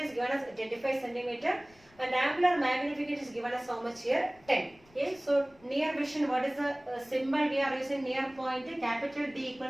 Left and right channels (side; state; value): left; noise; rumble, 28 dB below the sound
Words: given as 25 centimeter and angular magnification is given as how much here? 10. Okay, so near vision, what is the symbol we are using? Near point, capital D